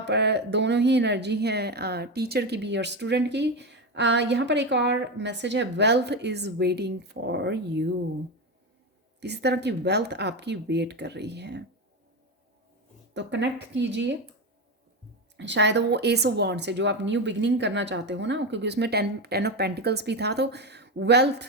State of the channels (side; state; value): both; normal; correlation 0.16